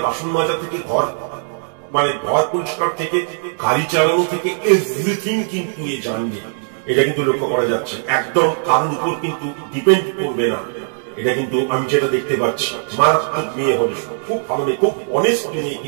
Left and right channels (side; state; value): left; silent; digital silence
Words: বাসন মাজা থেকে ঘর মানে ঘর পরিষ্কার থেকে গাড়ি চালানো থেকে এভরিথিং কিন্তু এ জানবে, এটা কিন্তু লক্ষ্য করা যাচ্ছে। একদম কারোর উপর কিন্তু ডিপেন্ড করবে না, এটা কিন্তু আমি যেটা দেখতে পাচ্ছি। মারাত্মক মেয়ে হবে, খুব ভালো মেয়ে, খুব অনেস্ট মেয়ে